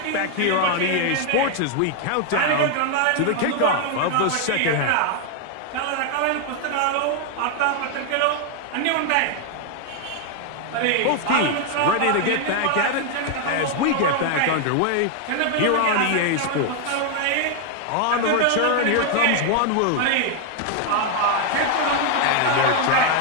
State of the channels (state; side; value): different; both; correlation 0.01